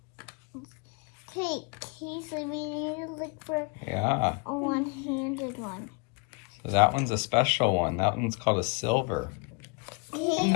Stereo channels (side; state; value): right; quieter; 31.7 dB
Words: Okay, so we need to look for a one-handed one. So that one's a special one. That one's called a silver.